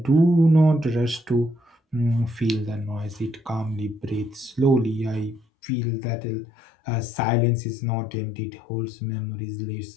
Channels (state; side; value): drops out; right; at 5.5 s